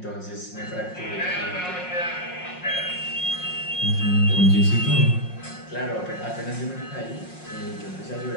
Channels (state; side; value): late; right; 5.5 ms